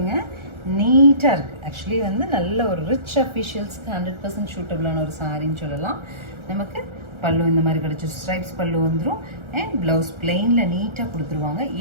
நீட்டாக இருக்குது. ஆக்சுவலி வந்து நல்ல ஒரு ரிச் அஃபிஷியல்ஸ்க்கு 100% சூட்டபிளான ஒரு சாரின்னு சொல்லலாம். நமக்கு பல்லு இந்த மாதிரி கிடச்சி ஸ்ட்ரைப்ஸ் பல்லு வந்துடும். அண்ட் ப்ளவுஸ் பிளெயினில் நீட்டாக கொடுத்துருவாங்க.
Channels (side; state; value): left; late; 1.4 ms